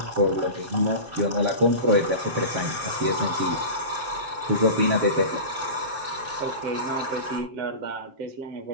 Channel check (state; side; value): late; left; 7.4 ms